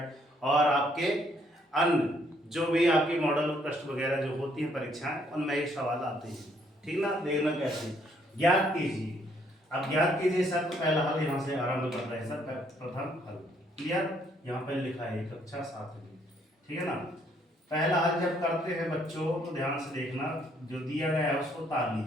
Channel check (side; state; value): both; normal; correlation 0.68